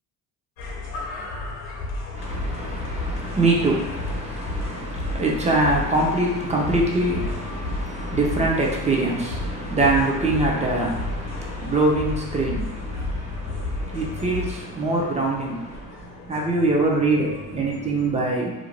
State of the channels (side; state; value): both; normal; correlation 0.33